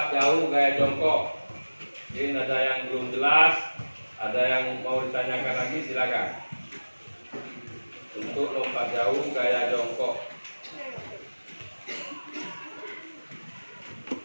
jauh gaya jongkok. Mungkin ada yang belum jelas, ada yang mau ditanyakan lagi, silakan. Untuk lompat jauh gaya jongkok.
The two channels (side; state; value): both; inverted; correlation -1.00